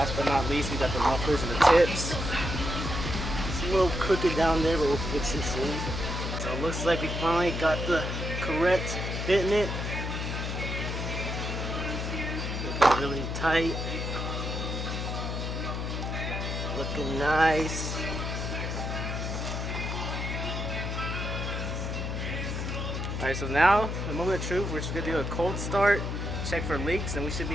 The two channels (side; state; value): left; noise; hum, 3 dB below the sound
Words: but not least, we got the mufflers and the tips. It's a little crooked down there, but we'll fix it soon. So it looks like we finally got the correct fit in it. Looking really tight. Looking nice. Alright, so now the moment of truth, we're just gonna do a cold start, check for leaks, and we should